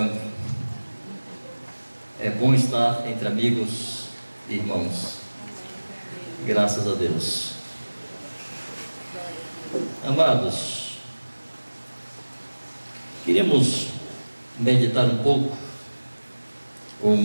É bom estar entre amigos e irmãos. Graças a Deus. Amados, queríamos meditar um pouco, ou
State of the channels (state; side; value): inverted; both; correlation -1.00